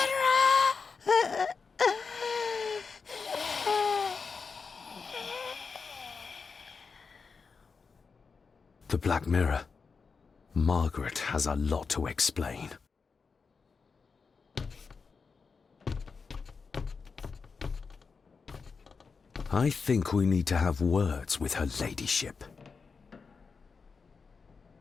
The Black Mirror. Margaret has a lot to explain. I think we need to have words with her ladyship.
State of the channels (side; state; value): right; quieter; 5.1 dB